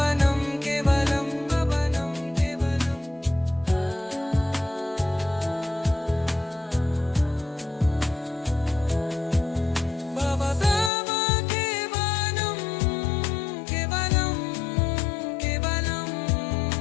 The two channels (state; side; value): drops out; right; at 10.9 s